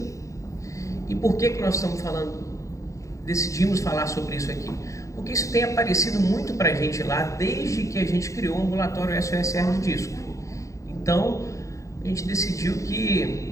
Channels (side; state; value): right; late; 0.15 ms